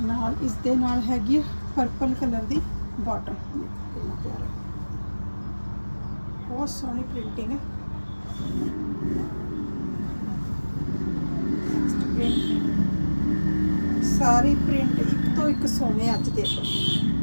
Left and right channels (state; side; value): inverted; both; correlation -1.00